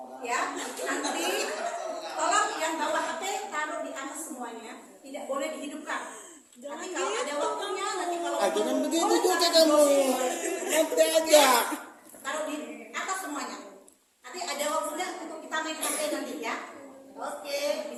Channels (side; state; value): both; identical; correlation 1.00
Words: ya, nanti tolong yang bawa HP taruh di atas semuanya, tidak boleh dihidupkan. Nanti kalau ada waktunya, nanti kalau Jangan begitu juga kamu. Nanti aja. taruh di atas semuanya. Nanti ada waktunya untuk kita main HP nanti ya. Oke,